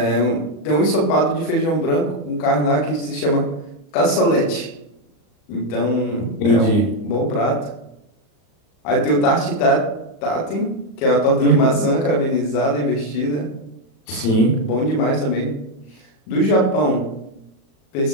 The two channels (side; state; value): right; late; 37 ms